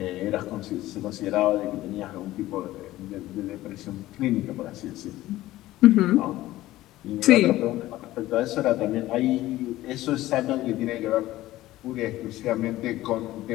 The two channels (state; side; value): quieter; right; 16.0 dB